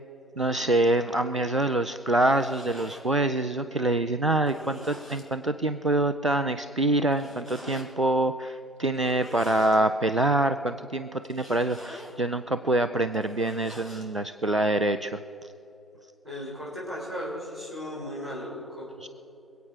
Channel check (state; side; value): normal; both; correlation 0.49